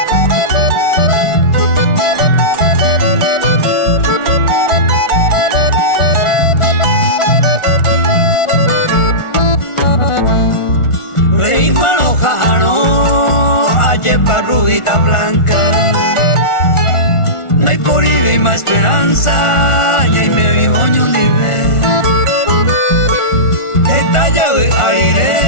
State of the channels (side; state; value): right; late; 1.4 ms